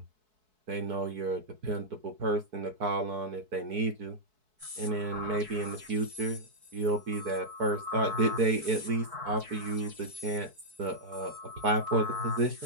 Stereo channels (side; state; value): left; late; 4.6 ms